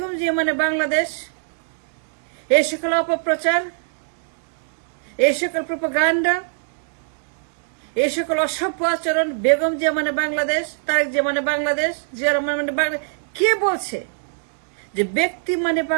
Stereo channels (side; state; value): left; silent; digital silence